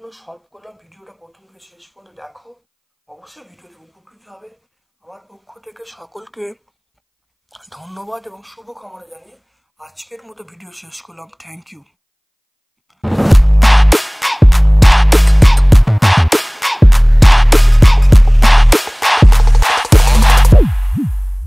সলভ করলাম। ভিডিওটা প্রথম থেকে শেষ পর্যন্ত দেখো, অবশ্যই ভিডিওতে উপকৃত হবে। আমার পক্ষ থেকে সকলকে ধন্যবাদ এবং শুভকামনা জানিয়ে আজকের মতো ভিডিও শেষ করলাম। Thank you.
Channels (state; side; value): identical; both; correlation 1.00